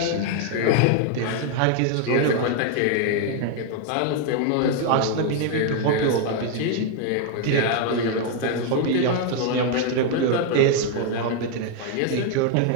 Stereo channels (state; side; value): different; both; correlation 0.00